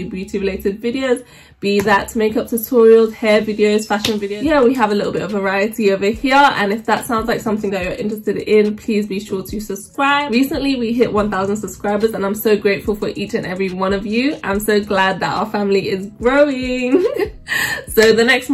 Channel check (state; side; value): identical; both; correlation 1.00